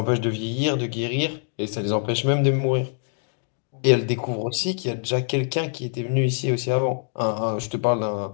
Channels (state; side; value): silent; right; digital silence